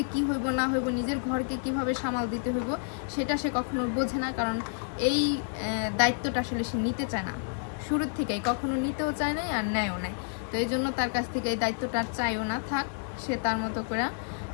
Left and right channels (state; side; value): silent; right; digital silence